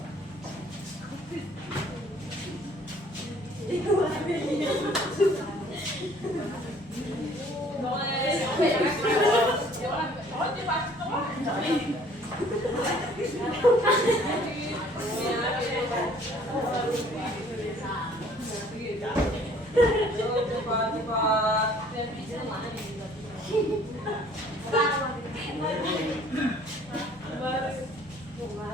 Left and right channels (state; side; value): normal; both; correlation 0.56